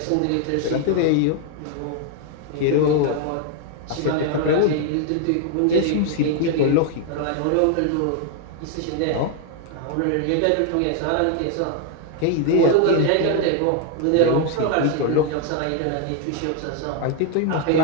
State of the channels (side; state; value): both; different; correlation 0.00